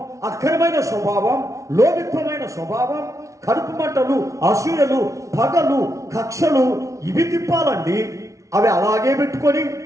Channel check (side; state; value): left; late; 0.15 ms